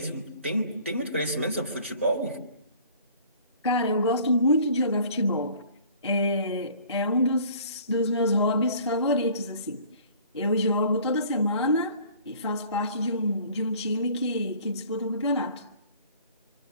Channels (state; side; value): inverted; both; correlation -0.51